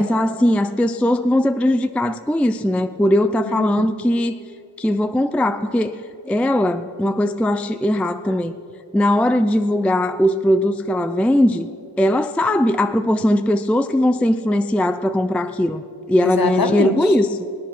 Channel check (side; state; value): both; normal; correlation 0.86